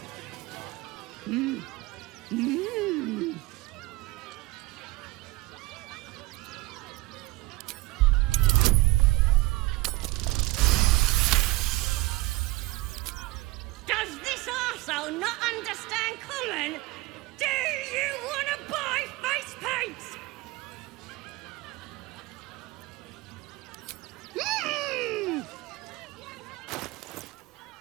Does this arsehole not understand common? Do you want to buy face paints?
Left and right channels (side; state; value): left; quieter; 21.0 dB